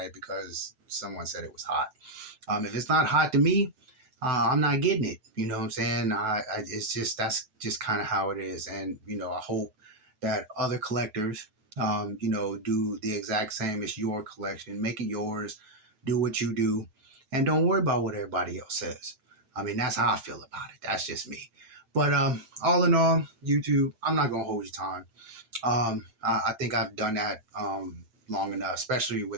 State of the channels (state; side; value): late; left; 9.2 ms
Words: it because someone said it was hot. If it's not hot to me, I'm not getting it. You know what I'm saying? It's just, that's just kind of how it is. And I hope that other collectors, do the exact same as your collection. Make it yours. Do what you do, and don't worry about what everybody else says. I mean, that's how I feel about it. That's just me. But all in all, YouTube, I'm not gonna hold your time. I think I've done that long enough, especially